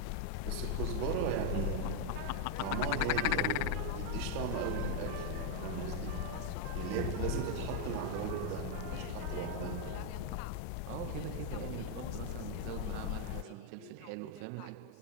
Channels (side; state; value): both; different; correlation 0.00